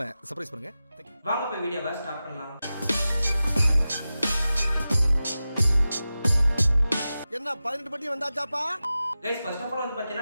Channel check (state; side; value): inverted; both; correlation -0.94